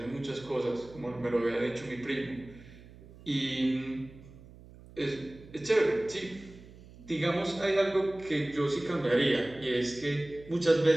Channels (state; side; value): noise; right; hum, 20 dB below the sound